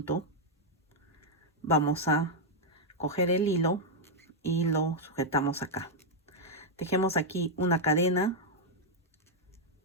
vamos a coger el hilo y lo sujetamos acá. Tejemos aquí una cadena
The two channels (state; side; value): normal; both; correlation -0.02